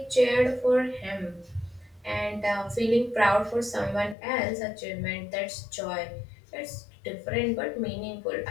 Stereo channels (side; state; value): right; drops out; at 4.2 s